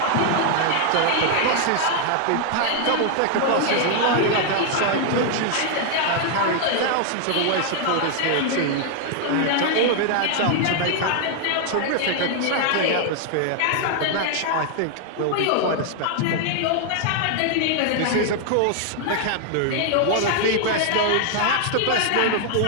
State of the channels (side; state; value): both; different; correlation 0.00